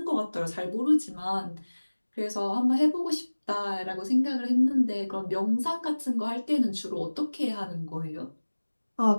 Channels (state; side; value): inverted; both; correlation -1.00